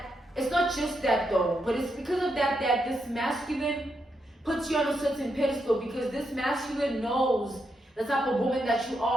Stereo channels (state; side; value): normal; both; correlation 0.82